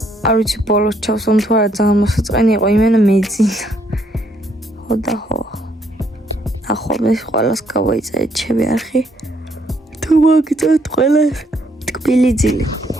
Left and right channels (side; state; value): both; normal; correlation 0.70